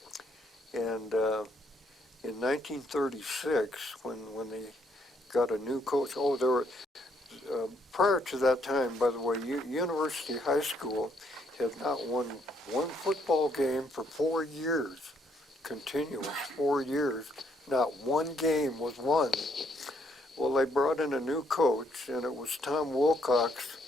And in 1936, when they got a new coach, there were, prior to that time, by the way, University High School had not won one football game for 4 years, continuous 4 years. Not one game was won. Well, they brought in a new coach, and it was Tom Wilcox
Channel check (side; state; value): both; normal; correlation 0.71